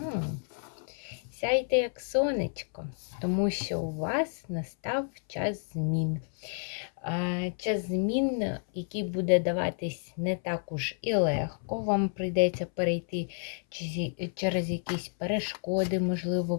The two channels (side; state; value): right; silent; 58 dB below the other